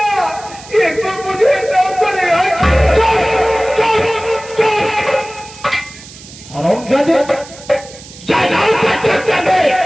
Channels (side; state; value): right; noise; hiss, 18 dB below the sound